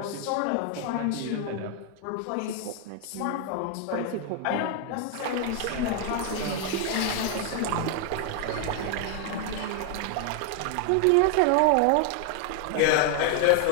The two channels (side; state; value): both; different; correlation 0.01